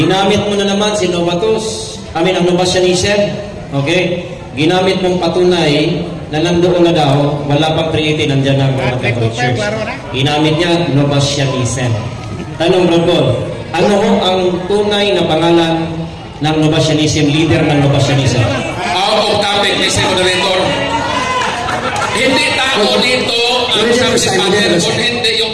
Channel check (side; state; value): both; identical; correlation 1.00